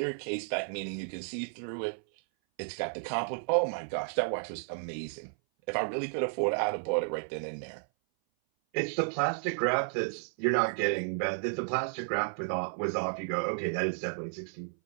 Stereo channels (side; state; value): left; silent; 56 dB below the other